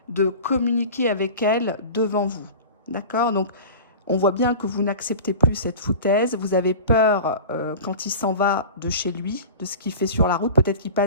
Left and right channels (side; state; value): both; inverted; correlation -0.36